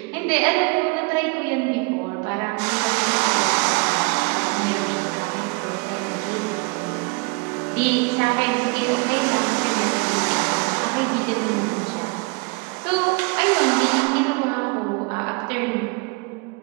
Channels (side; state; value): left; quieter; 29.6 dB